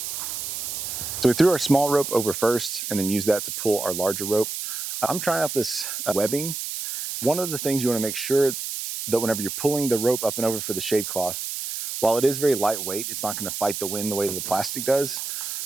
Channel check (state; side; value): noise; right; hiss, 5 dB below the sound